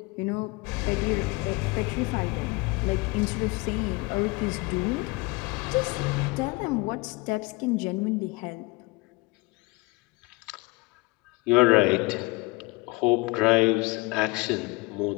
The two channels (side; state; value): right; quieter; 25.4 dB